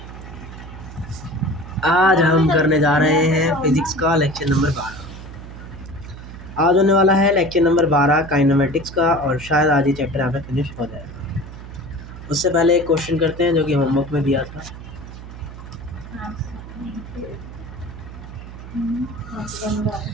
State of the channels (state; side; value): noise; right; hum, 13 dB below the sound